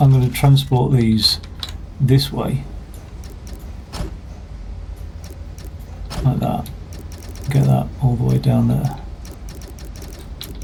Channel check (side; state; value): both; identical; correlation 1.00